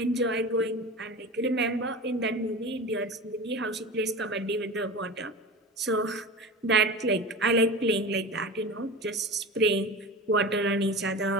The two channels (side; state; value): both; normal; correlation 0.31